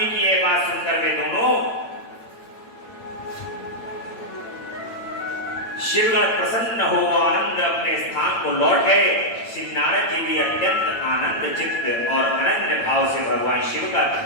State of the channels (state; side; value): late; right; 8.9 ms